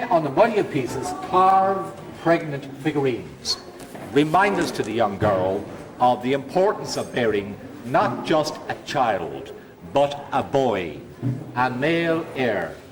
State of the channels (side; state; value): both; identical; correlation 1.00